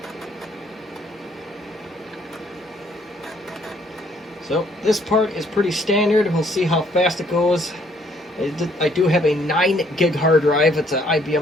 So this part is pretty standard. We'll see how fast it goes. I do have a 9 gig hard drive. It's an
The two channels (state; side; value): normal; both; correlation 0.65